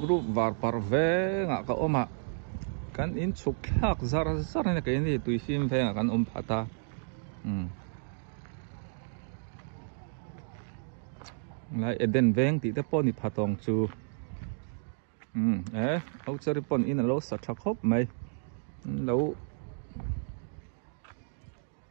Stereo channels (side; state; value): left; silent; digital silence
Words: group var parve nga ka oma kan in chuklak zar na kain ni tuisim ve nga kan phata lại Eden veng thì ta pon ni phatong chu au chari pon in lo sa thak hop mai lo